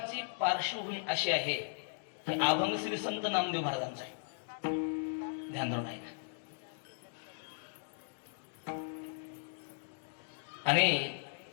पार्श्वभूमी अशी आहे की अभंग श्री संत नामदेव महाराजांचा आहे. ध्यान धरून आहे. आणि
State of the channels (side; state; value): right; silent; digital silence